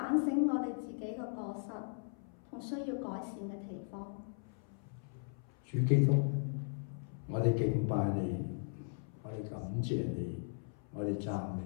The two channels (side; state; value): right; silent; 53 dB below the other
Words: 省我哋自己嘅過失同需要改善嘅地方。主基督，我哋敬拜你，我哋感謝你，我哋讚美